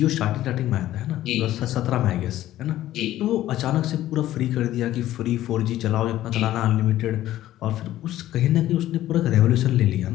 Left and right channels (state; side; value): quieter; right; 13.9 dB